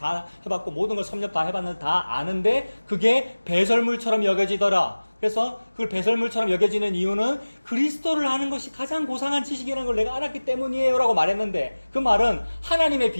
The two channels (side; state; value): both; inverted; correlation -1.00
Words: 해봤고, 모든 걸 섭렵 다 해봤는데 다 아는데, 그게 배설물처럼 여겨지더라. 그래서 그걸 배설물처럼 여겨지는 이유는 그리스도를 아는 것이 가장 고상한 지식이라는 걸 내가 알았기 때문이에요 라고 말했는데, 그 말은 하나님의